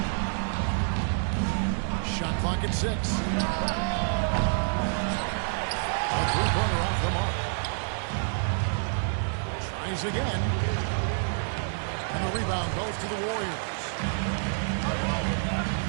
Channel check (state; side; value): silent; left; 57 dB below the other